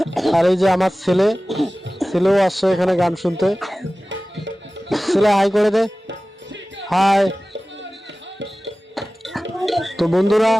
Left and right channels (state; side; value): normal; both; correlation 0.97